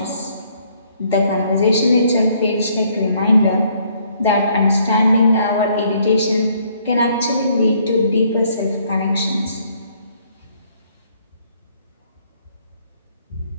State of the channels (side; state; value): both; inverted; correlation -0.66